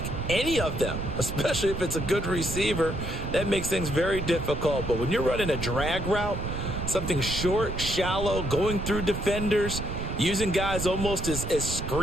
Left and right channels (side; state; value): right; noise; rumble, 5 dB below the sound